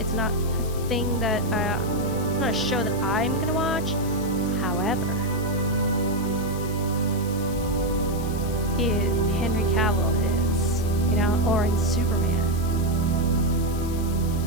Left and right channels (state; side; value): noise; left; hiss, 15 dB below the sound